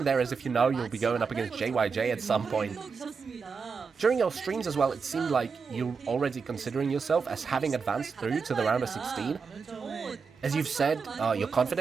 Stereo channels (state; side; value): quieter; left; 5.4 dB